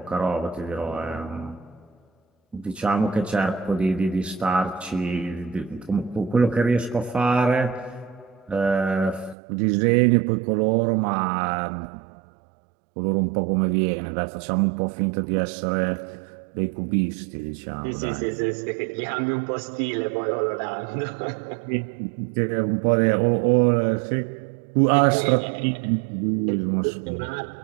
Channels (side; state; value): left; drops out; at 9.3 s